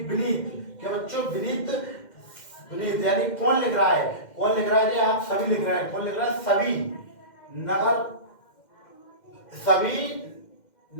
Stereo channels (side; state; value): right; late; 2.1 ms